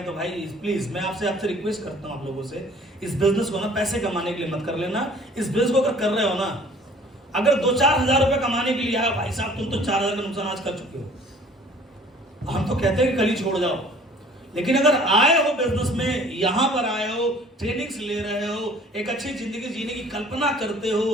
तो भाई प्लीज मैं आपसे रिक्वेस्ट करता हूं आप लोगों से, इस बिजनेस को ना पैसे कमाने के लिए मत कर लेना। इस बिजनेस को अगर कर रहे हो ना, अगर 2-4 हजार रुपए कमाने के लिए आया, भाई साहब तुम तो 4 हजार का नुकसान आज कर चुके हो, हम तो कहते हैं कि कल ही छोड़ जाओ। लेकिन अगर आए हो बिजनेस में, यहां पर आए हो, ट्रेनिंग्स ले रहे हो, एक अच्छी जिंदगी जीने की कल्पना करते हो,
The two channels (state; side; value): normal; both; correlation 0.52